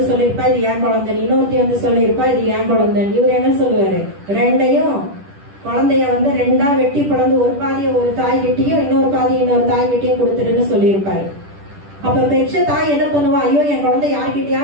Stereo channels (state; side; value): late; left; 10 ms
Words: சொல்லியிருப்பா இது ஏன் குழந்தை, இன்னொருத்தி வந்து சொல்லியிருப்பா இது ஏன் குழந்தை. இவர் என்ன சொல்லுவாரு? ரெண்டையும் குழந்தைய வந்து 2ஆ வெட்டி பிளந்து ஒரு பாதியை ஒரு தாய் கிட்டையும் இன்னொரு பாதியை இன்னொரு தாய் கிட்டையும் கொடுத்துருன்னு சொல்லியிருப்பாரு. அப்ப பெற்ற தாய் என்ன பண்ணுவா? ஐயோ என் குழந்தை